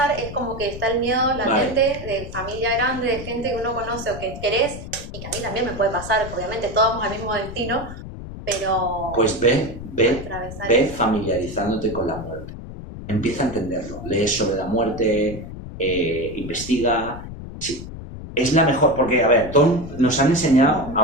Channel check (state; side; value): noise; left; rumble, 11 dB below the sound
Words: es como que está el miedo latente de familia grande, de gente que uno conoce o que querés, y que a mí también me puede pasar, obviamente todos vamos al mismo destino, pero... Pues ve familiarizándote con la muerte. Empieza a entenderlo. Lees sobre la muerte, investiga. Sí, es la mejor, porque, a ver, nos han enseñado